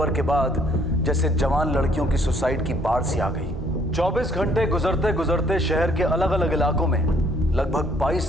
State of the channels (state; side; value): normal; both; correlation 0.63